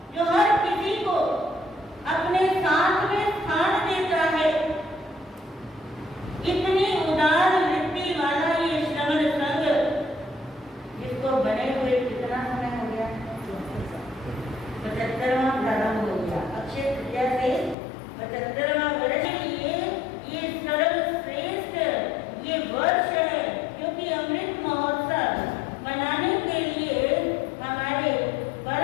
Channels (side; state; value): right; drops out; at 17.8 s